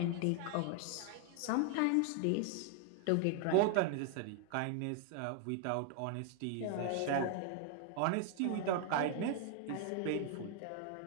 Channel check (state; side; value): different; both; correlation 0.00